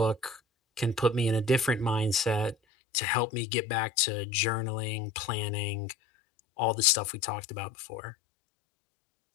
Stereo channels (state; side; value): drops out; right; at 2.6 s